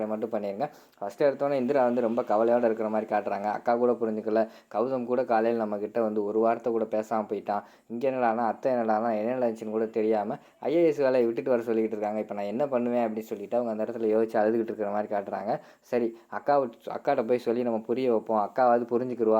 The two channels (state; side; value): identical; both; correlation 1.00